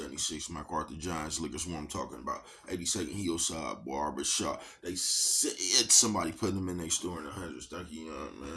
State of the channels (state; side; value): identical; both; correlation 1.00